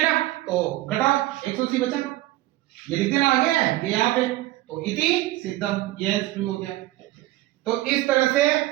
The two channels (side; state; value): left; quieter; 17.1 dB